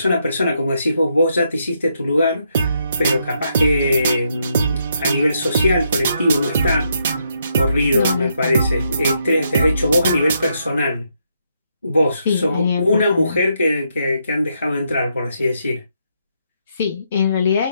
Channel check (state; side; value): inverted; both; correlation -0.77